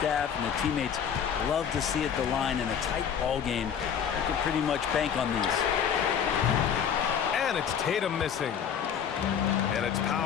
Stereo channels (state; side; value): quieter; right; 8.0 dB